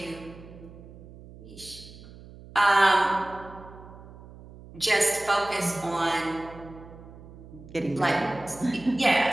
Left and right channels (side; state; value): right; noise; hum, 18 dB below the sound